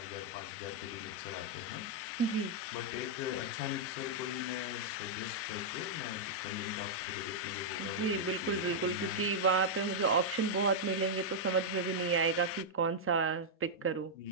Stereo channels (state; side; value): normal; both; correlation -0.06